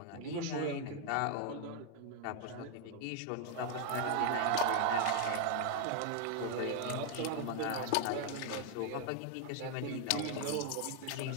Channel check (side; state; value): both; different; correlation 0.00